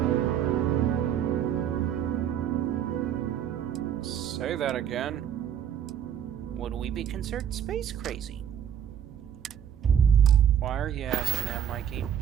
Say that again. Would we be considered space crazy? Why are you asking that, Mikey?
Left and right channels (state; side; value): quieter; left; 9.2 dB